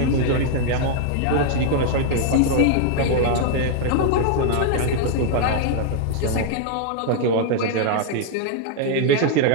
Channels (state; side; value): different; both; correlation -0.01